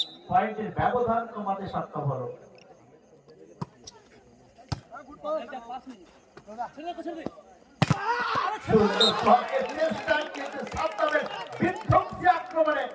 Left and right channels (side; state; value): both; identical; correlation 1.00